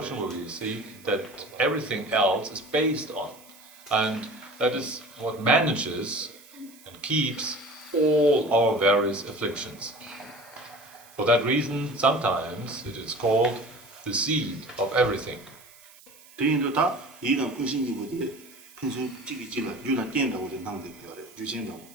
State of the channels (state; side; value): noise; right; hiss, 23 dB below the sound